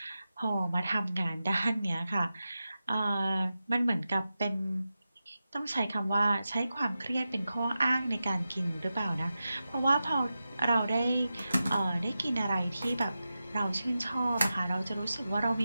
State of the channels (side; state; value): both; inverted; correlation -0.92